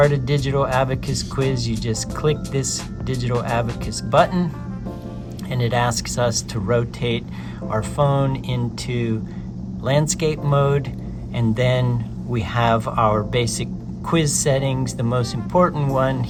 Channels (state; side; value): identical; both; correlation 1.00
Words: a Digital Abacus quiz, you just click this Digital Abacus button, and it asks us to rotate our phone into landscape mode, and then we have our basic quiz settings. The most important one